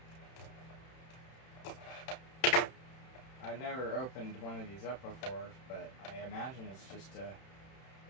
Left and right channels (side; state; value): right; late; 31 ms